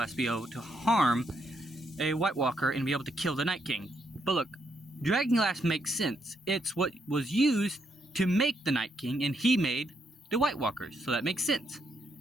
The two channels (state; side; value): normal; both; correlation 0.77